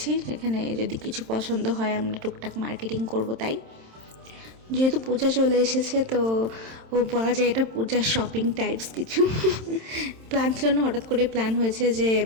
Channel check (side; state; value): left; late; 27 ms